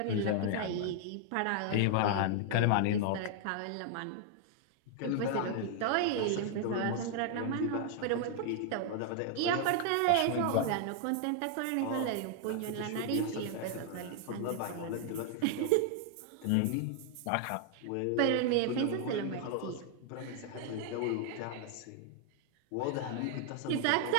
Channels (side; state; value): both; different; correlation 0.00